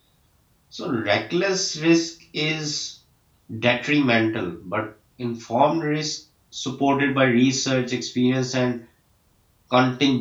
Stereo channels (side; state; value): both; identical; correlation 1.00